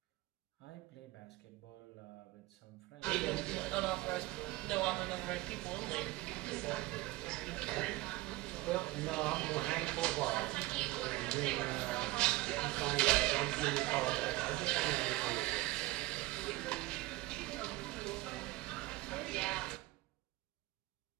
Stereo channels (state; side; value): quieter; left; 19.5 dB